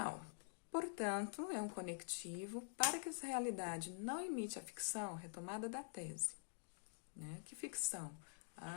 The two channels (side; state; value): right; silent; digital silence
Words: Portanto, é um conectivo para que essa realidade não imite a ficção, retomada da tese. Né? Que ficção?